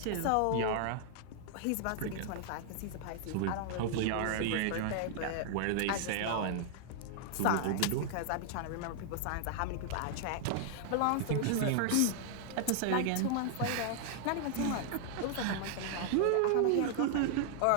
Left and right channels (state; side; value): different; both; correlation 0.00